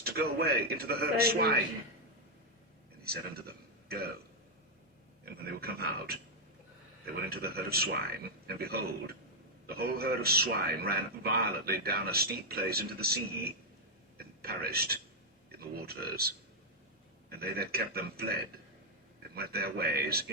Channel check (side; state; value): both; normal; correlation -0.03